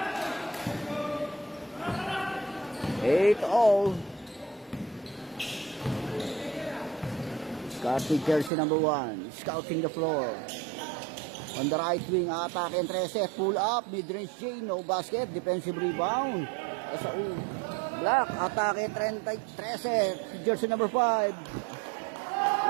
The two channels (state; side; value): drops out; left; at 8.5 s